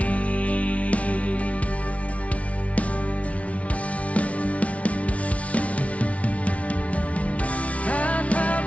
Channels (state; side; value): late; right; 0.065 ms